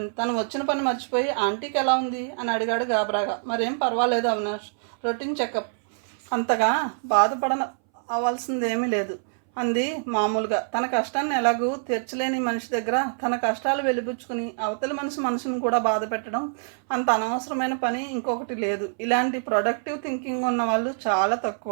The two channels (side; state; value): left; silent; 61 dB below the other